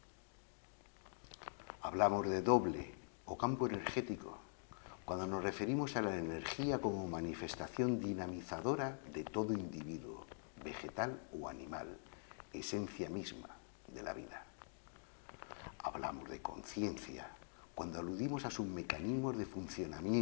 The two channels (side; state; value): right; silent; digital silence